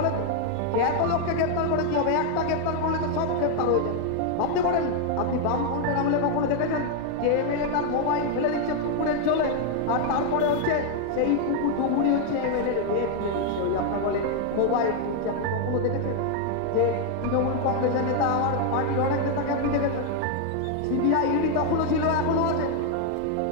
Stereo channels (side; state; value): both; different; correlation 0.00